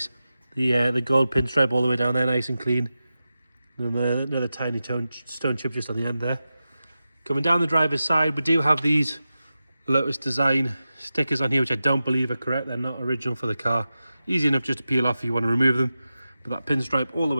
The gold pinstripe all the way down there, nice and clean. And another tiny stone chip just on the end there. Coming down the driver's side, we do have these Lotus design stickers on here, which I don't believe are correct. They're not original for the car. Easy enough just to peel off if you want to remove them. But that pinstripe all the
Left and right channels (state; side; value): inverted; both; correlation -0.93